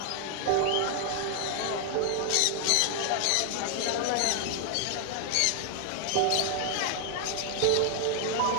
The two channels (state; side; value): different; both; correlation 0.00